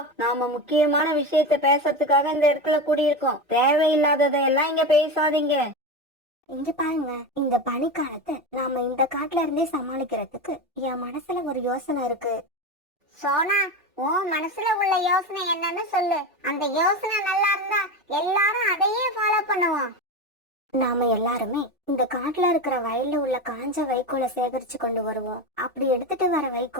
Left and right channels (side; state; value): both; normal; correlation 0.20